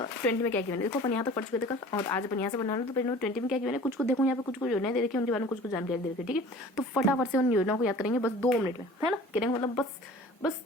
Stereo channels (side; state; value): both; normal; correlation 0.45